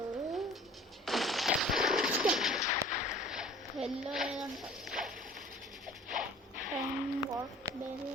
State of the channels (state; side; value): normal; both; correlation 0.48